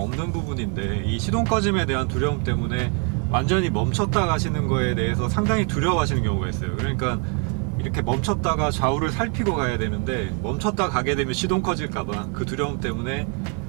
부분인데 이 시동 꺼짐에 대한 두려움 때문에 완전히 멈췄다 가시는 거에 대해서 상당히 두려워하시는 경우가 있어요. 그러니까 이렇게 멈췄다가 좌우를 살피고 가야 되는데 멈췄다 가게 되면 시동 꺼질까봐 그 두려움 때문에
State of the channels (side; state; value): left; quieter; 35.0 dB